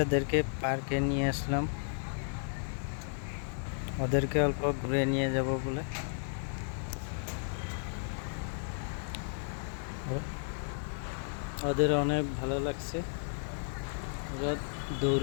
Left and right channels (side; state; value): right; silent; digital silence